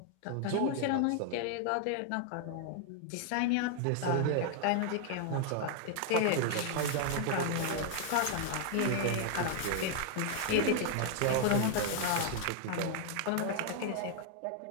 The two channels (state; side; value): different; both; correlation 0.00